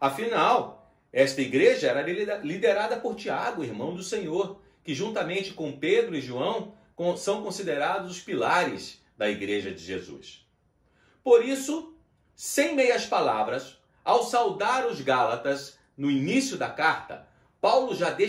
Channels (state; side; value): identical; both; correlation 1.00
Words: Afinal, esta igreja era liderada por Tiago, irmão do Senhor, que juntamente com Pedro e João são considerados os pilares da igreja de Jesus. Por isso, sem meias palavras, ao saudar os Gálatas no início da carta, Paulo já